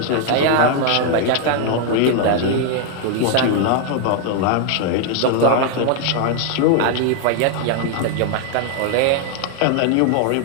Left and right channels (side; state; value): both; different; correlation 0.00